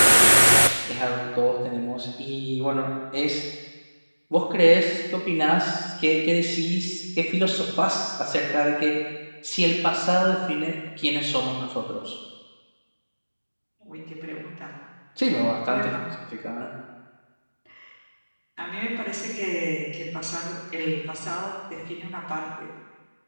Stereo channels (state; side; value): inverted; both; correlation -1.00